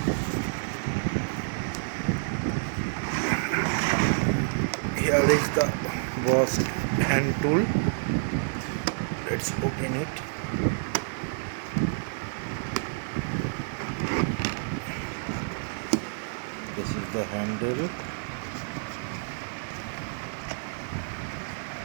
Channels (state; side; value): silent; left; 59 dB below the other